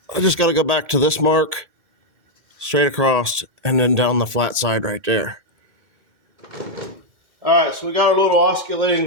I just got to go back to this mark, straight across, and then down the flat side right there. Alright, so we got our little oscillating,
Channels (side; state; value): left; late; 2.1 ms